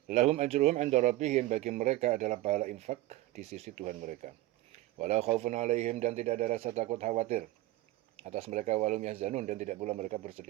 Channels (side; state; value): left; quieter; 16.9 dB